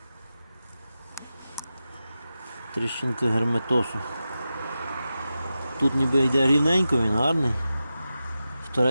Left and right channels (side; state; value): both; inverted; correlation -0.92